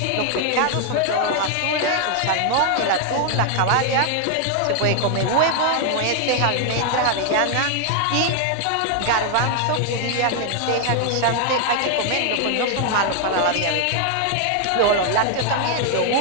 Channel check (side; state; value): both; different; correlation 0.00